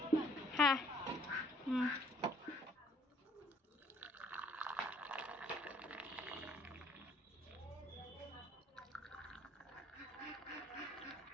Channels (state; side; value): normal; both; correlation 0.60